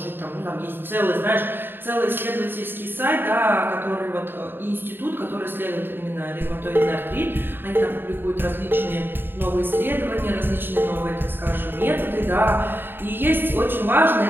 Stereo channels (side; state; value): left; late; 0.098 ms